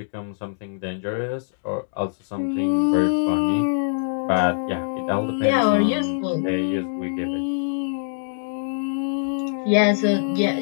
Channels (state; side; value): silent; right; digital silence